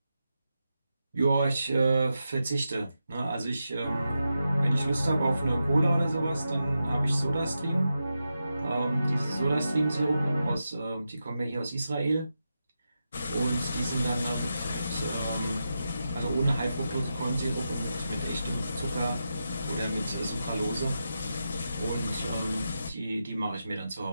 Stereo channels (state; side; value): inverted; both; correlation -0.88